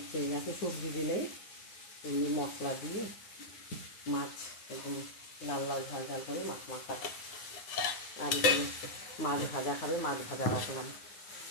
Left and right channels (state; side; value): late; right; 9.6 ms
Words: এত সবজি দিলেই এমনি মশলা দিয়ে মাছ একদম লাল লাল ঝাল ঝাল করে মাছ মাখা। আর এখানে মাছ ভাজা খাবে, মাছ ভাজা রাখলাম।